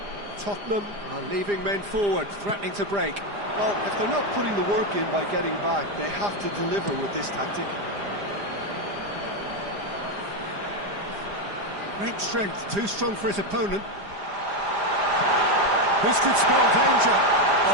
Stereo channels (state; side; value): late; left; 5.0 ms